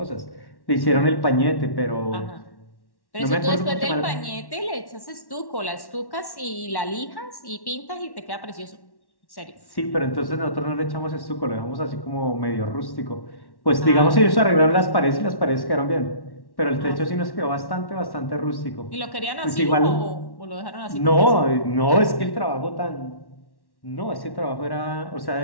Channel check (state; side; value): late; right; 1.1 ms